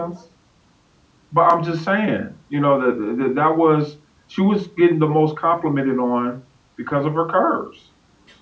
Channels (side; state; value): both; identical; correlation 1.00